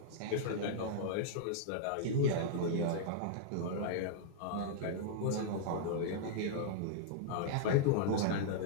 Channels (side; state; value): both; different; correlation -0.02